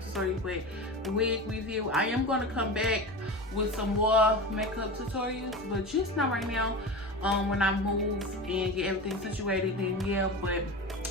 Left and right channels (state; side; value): normal; both; correlation 0.27